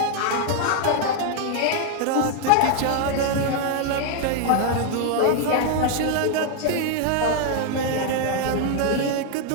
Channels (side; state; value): both; different; correlation 0.00